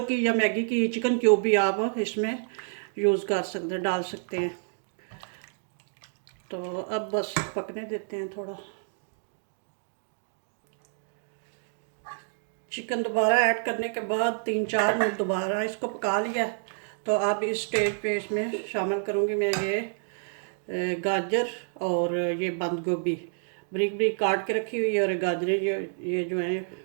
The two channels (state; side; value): silent; left; digital silence